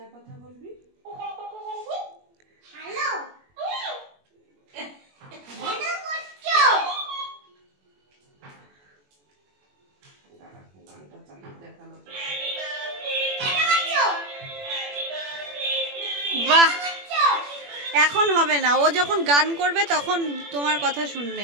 কথা বলবি। বাহ, এখন হবে না, ও যখন গান করবে তখন তোমার কথা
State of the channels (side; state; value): left; late; 21 ms